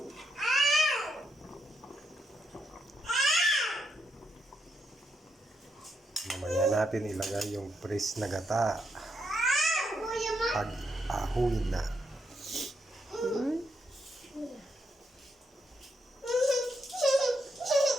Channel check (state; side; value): normal; both; correlation 0.80